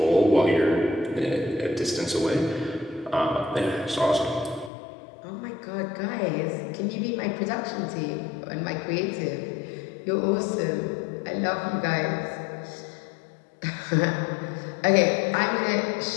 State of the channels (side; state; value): right; drops out; at 4.7 s